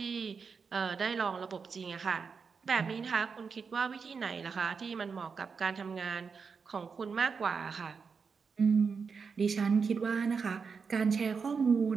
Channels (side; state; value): left; quieter; 5.5 dB